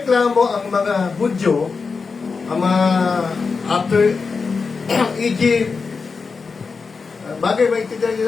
ang mga Hudyo, ang mga after Egypt, bagay maintindihan niyo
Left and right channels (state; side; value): quieter; right; 4.8 dB